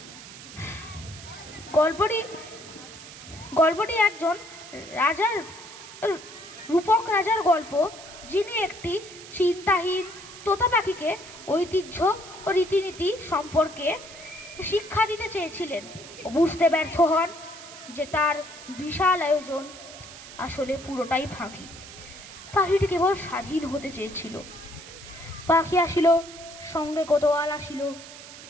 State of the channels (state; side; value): noise; right; hiss, 15 dB below the sound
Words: গল্পটি একজন রাজার, রূপক রাজার গল্প, যিনি একটি চিন্তাহীন তোতা পাখিকে ঐতিহ্য ও রীতিনীতি সম্পর্কে শিক্ষা দিতে চেয়েছিলেন ও বুঝতে ব্যর্থ হন যে তার বিশাল আয়োজন আসলে পুরোটাই ফাঁকি। পাখিটি কেবল স্বাধীন হতে চেয়েছিল। পাখি আসিল, সঙ্গে কোতোয়াল আসিল,